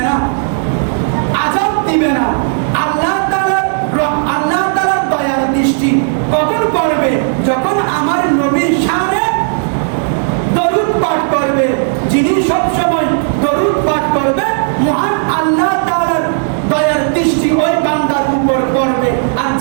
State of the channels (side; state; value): left; silent; 71 dB below the other